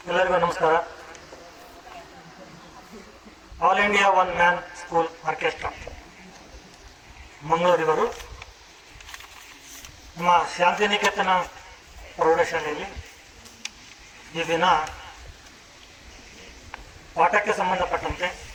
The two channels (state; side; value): identical; both; correlation 1.00